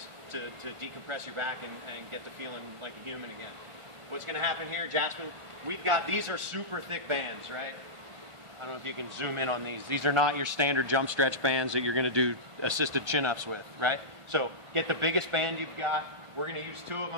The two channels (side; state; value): left; late; 1.5 ms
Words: to decompress your back and get to feeling like a human again. What's going to happen here, Jasmine, we've got, these are super thick bands, right? I don't know if you can zoom in on these. These are not your standard jump stretch bands that you're going to do assisted chin-ups with, right? So get the biggest band you've got. We're going to use 2 of